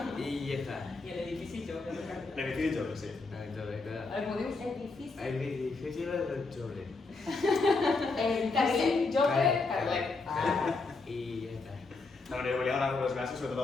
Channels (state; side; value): quieter; right; 3.8 dB